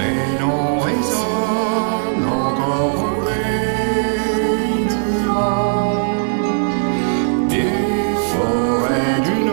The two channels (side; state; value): left; silent; digital silence